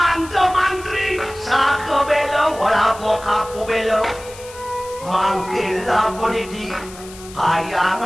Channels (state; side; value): noise; left; hiss, 18 dB below the sound